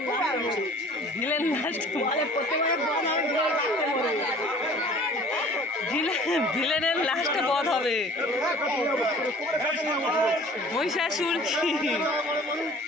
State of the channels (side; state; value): both; normal; correlation 0.48